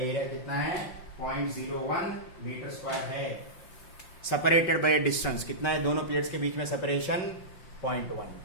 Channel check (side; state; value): right; late; 5.7 ms